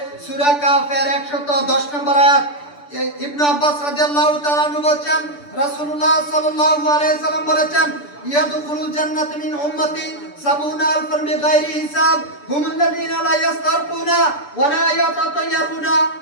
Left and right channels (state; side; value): late; right; 6.9 ms